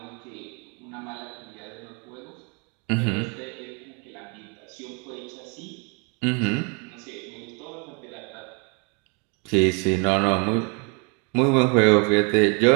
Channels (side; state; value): left; quieter; 33.8 dB